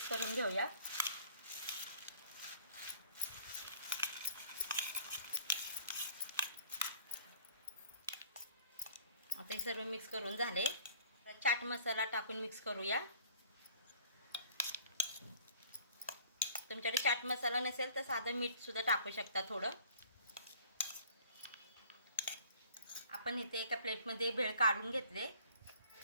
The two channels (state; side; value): inverted; both; correlation -0.53